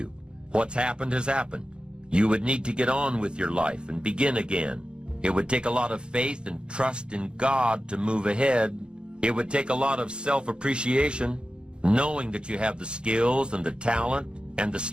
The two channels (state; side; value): late; left; 0.053 ms